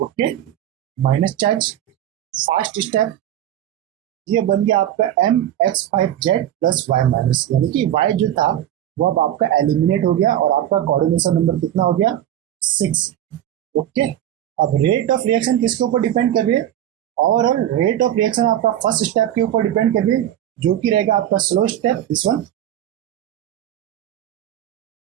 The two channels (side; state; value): left; quieter; 11.7 dB